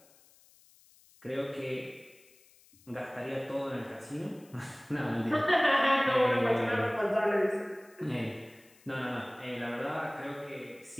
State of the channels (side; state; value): left; noise; hiss, 28 dB below the sound